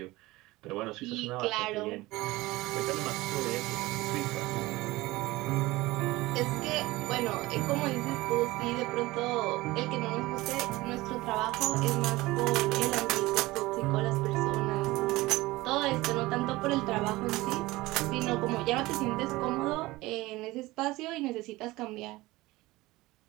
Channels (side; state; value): left; quieter; 19.8 dB